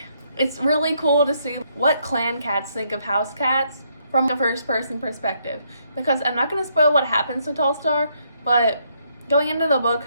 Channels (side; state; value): both; inverted; correlation -0.73